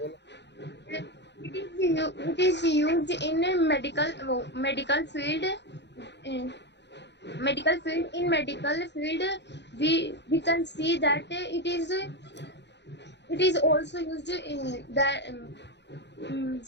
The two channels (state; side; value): late; right; 0.51 ms